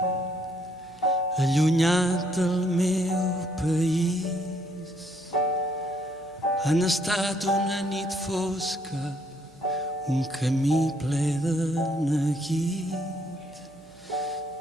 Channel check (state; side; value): noise; right; hum, 28 dB below the sound